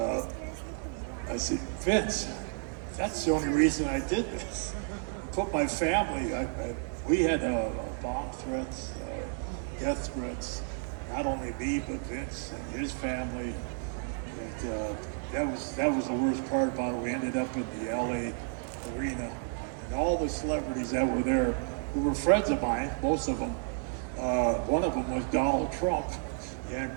I said, Vince, that's the only reason I did this. Put my family, we had bomb threats, death threats, not only me, but Vince and his family. And that was the worst part about it. We ended up in the LA arena, and all the celebrities that were there, who were friends of mine, most of them, one of them was Donald Trump,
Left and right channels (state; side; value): silent; left; 57 dB below the other